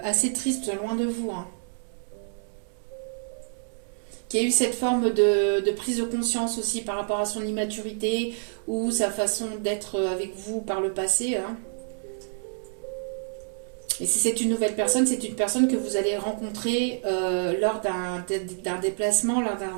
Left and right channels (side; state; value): left; silent; 60 dB below the other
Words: assez triste loin de vous, hein. Qui a eu cette forme de prise de conscience aussi par rapport à son immaturité ou sa façon d'être avec vous par le passé, hein. Et si c'est une nouvelle personne, c'est une personne que vous allez rencontrer lors d'un déplacement, lors d'un